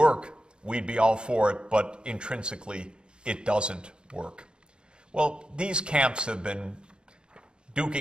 we'd be all for it, but intrinsically, it doesn't work. Well, these camps have been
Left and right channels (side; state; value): left; late; 0.051 ms